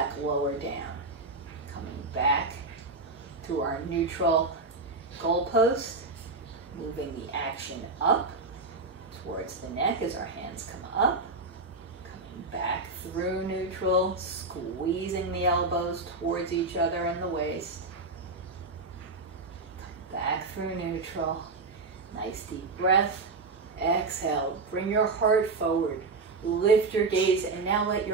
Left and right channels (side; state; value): left; quieter; 3.6 dB